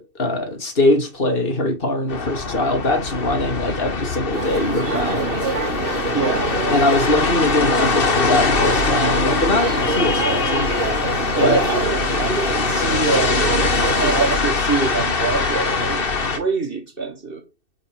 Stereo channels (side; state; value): right; late; 2.6 ms